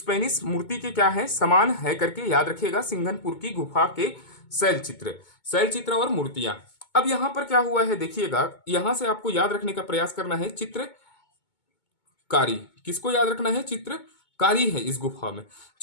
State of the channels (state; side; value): late; right; 2.2 ms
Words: मूर्ति के क्या है? समान है करके याद रखिएगा सिंघनपुर की गुफा के शैल चित्र और मूर्तियां। अब यहां पर क्या हुआ है देखिएगा, यहां से आपको याद रखने का प्रयास करना है चित्रकारी। किसको याद रखना है? चित्रकारी है इस गुफा में,